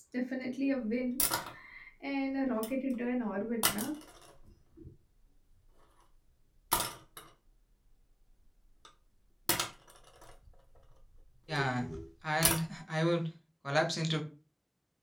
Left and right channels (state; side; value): identical; both; correlation 1.00